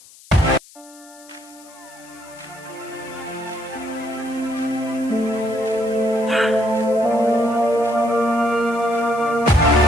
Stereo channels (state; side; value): noise; left; hiss, 23 dB below the sound